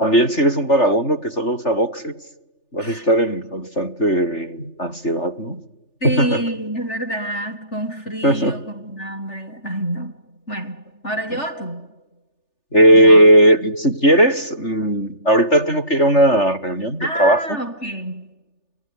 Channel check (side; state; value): right; late; 3.4 ms